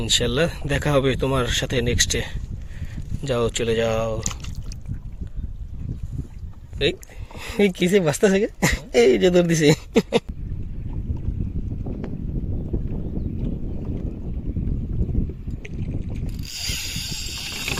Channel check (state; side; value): identical; both; correlation 1.00